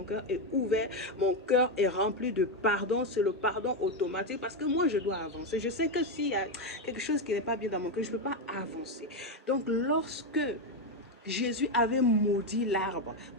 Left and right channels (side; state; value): both; normal; correlation 0.07